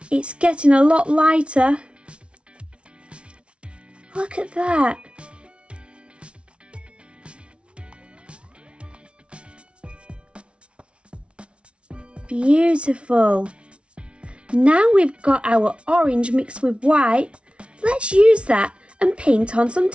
It's getting a lot lighter. Look at that. Beautiful. Now we've got our orange mixed with white. Let's use that and paint on some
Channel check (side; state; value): left; late; 0.059 ms